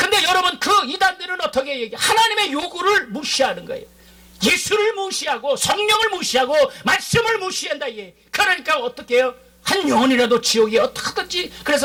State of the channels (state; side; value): identical; both; correlation 1.00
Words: 여러분, 그 이단들은 어떻게 얘기해? 하나님의 요구를 무시하는 거예요. 예수를 무시하고 성령을 무시하고 말씀을 무시한다. 그러니까 어떻게 해요? 한 영혼이라도 지옥에 어떻게든지.